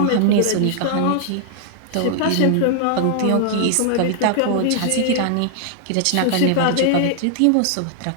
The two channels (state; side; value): different; both; correlation -0.01